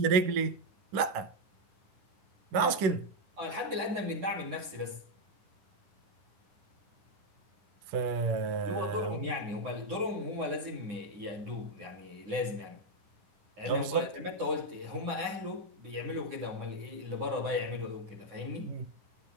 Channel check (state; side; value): late; left; 11 ms